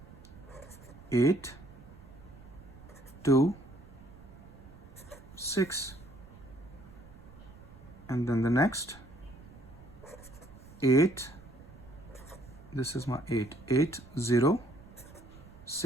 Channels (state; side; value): noise; right; rumble, 19 dB below the sound